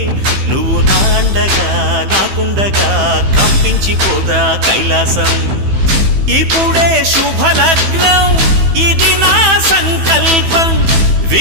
నువ్వు నాండగా నాకుండగా కంపించిపోదా కైలాసం. ఇప్పుడే శుభలగ్నం ఇది నా సంకల్పం,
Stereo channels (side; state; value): left; late; 15 ms